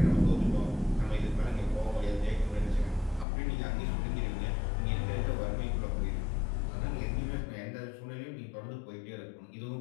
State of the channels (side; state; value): right; drops out; at 3.2 s